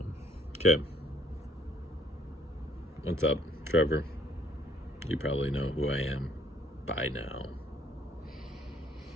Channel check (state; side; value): normal; both; correlation 0.60